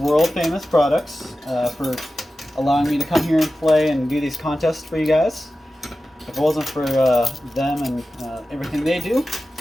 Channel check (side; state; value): both; normal; correlation 0.94